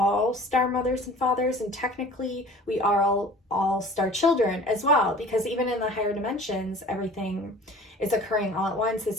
star mothers and fathers, and technically we are all star children as well, because even in the higher dimensions, everything is occurring all at once.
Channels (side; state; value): both; normal; correlation 0.45